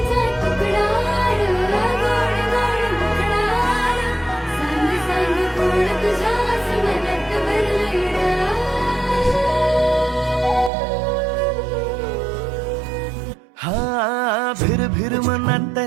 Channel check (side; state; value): left; drops out; at 10.7 s